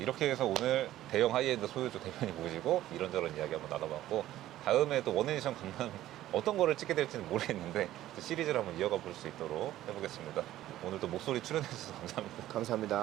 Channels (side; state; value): left; quieter; 14.0 dB